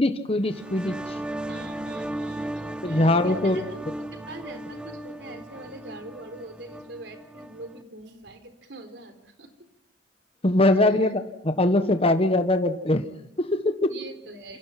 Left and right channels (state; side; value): normal; both; correlation 0.54